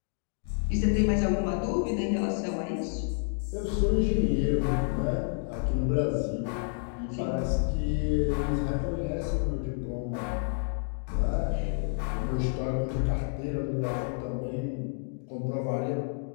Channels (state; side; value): silent; right; 58 dB below the other